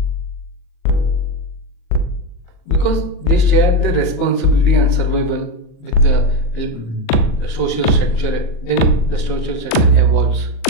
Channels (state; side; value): late; right; 39 ms